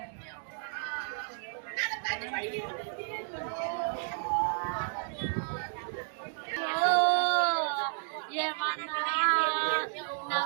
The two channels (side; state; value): left; silent; 56 dB below the other